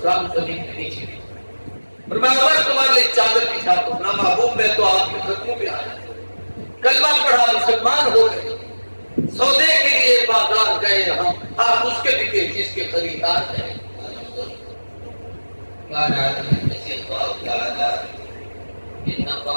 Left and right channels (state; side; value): inverted; both; correlation -1.00